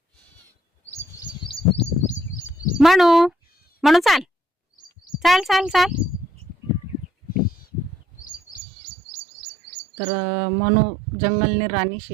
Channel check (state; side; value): drops out; left; at 8.6 s